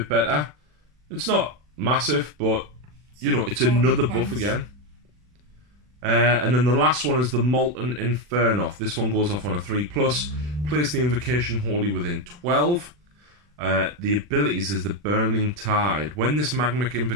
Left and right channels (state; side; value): late; left; 40 ms